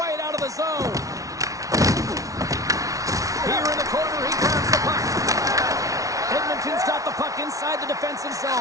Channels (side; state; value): left; late; 0.17 ms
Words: out of the zone. Here in the corner, he grabs the puck. Edmonton's got the puck inside the defensive